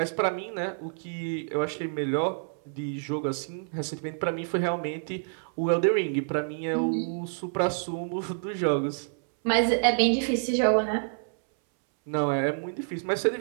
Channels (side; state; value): left; silent; 59 dB below the other